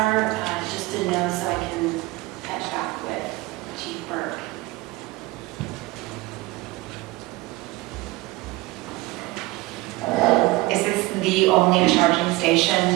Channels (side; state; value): left; quieter; 20.8 dB